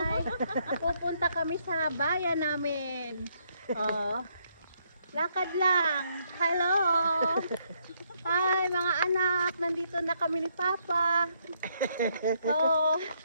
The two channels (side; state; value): both; inverted; correlation -0.73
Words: Pupunta kami sa bayan namin. Oh. Lakad lang. Hello! Hi mga anak, nandito na kami ni Papa. Oh.